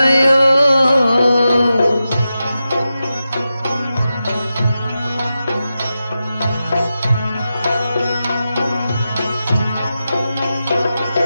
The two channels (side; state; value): both; inverted; correlation -0.91